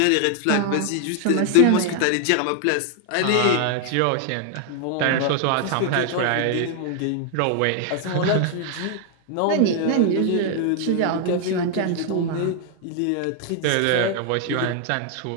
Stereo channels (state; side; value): different; both; correlation 0.00